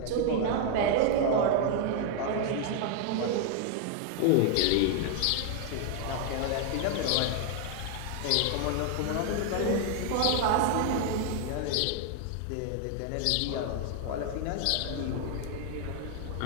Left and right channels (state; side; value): different; both; correlation 0.00